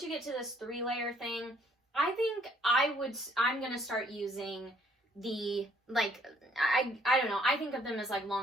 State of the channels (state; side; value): normal; both; correlation 0.64